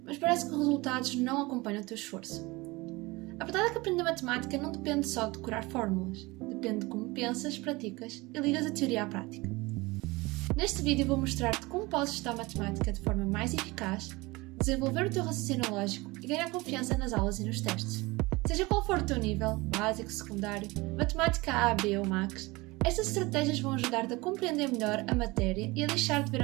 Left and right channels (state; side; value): quieter; left; 22.8 dB